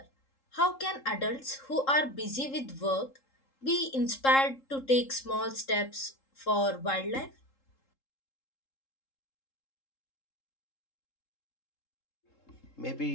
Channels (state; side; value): late; right; 3.7 ms